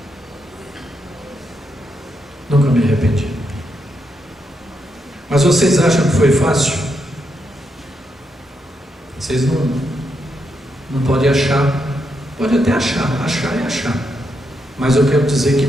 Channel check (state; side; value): normal; both; correlation 0.81